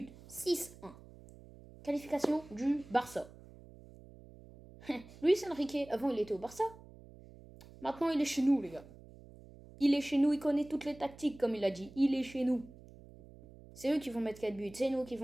6-1. Qualification du Barça. Luis Enrique, avant il était au Barça. Maintenant il est chez nous, les gars. Il est chez nous, il connaît toutes les tactiques, comme il a dit. Il est chez nous. C'est eux qui vont mettre 4 buts, c'est nous qui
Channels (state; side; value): noise; right; hum, 20 dB below the sound